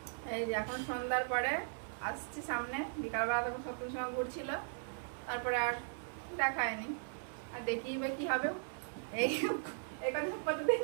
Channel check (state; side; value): silent; left; digital silence